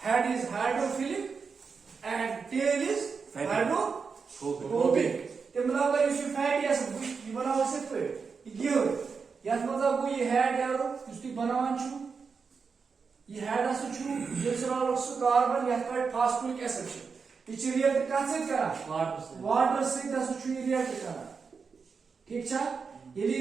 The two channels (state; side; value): quieter; left; 5.4 dB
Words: is hydrophilic and tail is hydrophobic. ते मतलब अगर इस fatty ऐसे ये बनाओ सिर्फ ये हो या तो मतलब वो ये हेड यार उसकी बनावन चु ये हेड असु चु ग्लिसरॉल ऑक्सो कार्बन या फिर फॉस्फोरिक एसिड ये रिएक्ट कहाँ से करा वाटर से दसु चु रिएक्ट करा ठीक छा ये